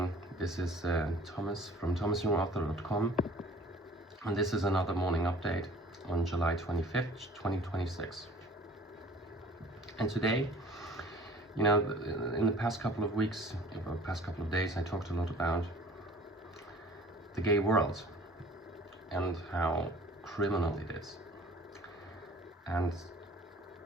this is Thomas from thomasyoungauthor.com, and this is another morning update on July 25th, 2026. And today, in the past couple of weeks, or past couple of days, I talked a lot about the gay world and how criminal it is. And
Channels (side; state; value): both; normal; correlation 0.50